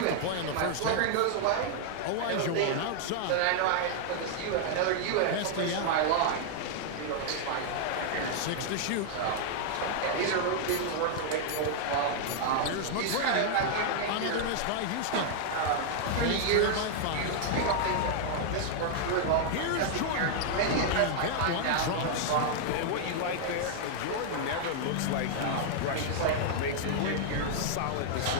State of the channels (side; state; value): both; different; correlation -0.01